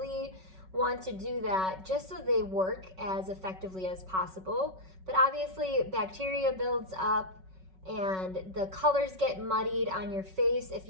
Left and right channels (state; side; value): late; left; 5.3 ms